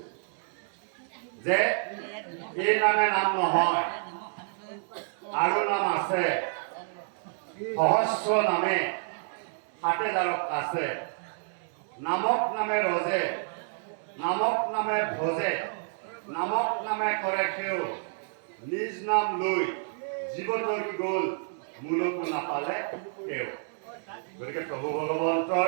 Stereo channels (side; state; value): left; silent; 58 dB below the other